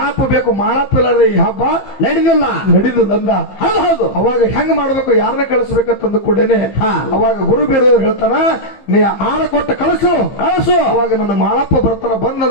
ಬೇಕು, ಮಾಳಪ್ಪ ಇಲ್ಲಾರ್ದೆ ಈ ಹಬ್ಬ ನಡೀದಿಲ್ಲ ಅಂದ. ಹೌದು. ಅವಾಗ ಹೆಂಗ್ ಮಾಡ್ಬೇಕು, ಯಾರನ್ನ ಕಳಿಸ್ಬೇಕಂತಂದು ಕೂಡೇನೆ ಅವಾಗ ಗುರು ಬೀರದೇವ್ರು ಹೇಳ್ತಾನ, ನೀ ಆಳ ಕೊಟ್ಟ ಕಳಿಸು. ಅವಾಗ ನನ್ನ ಮಾಳಪ್ಪ ಬರ್ತಾನ,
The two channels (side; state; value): right; late; 15 ms